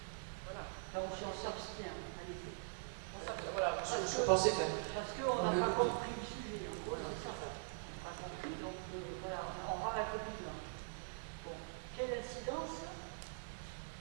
Voilà. Donc si on s'abstient, allez. Voilà, je pensais faire. Parce qu'on n'a pas compris le sujet, en gros, c'est ça. On n'a pas compris, donc voilà, on aura la copie là. Bon, quelle incidence? Je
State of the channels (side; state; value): left; silent; digital silence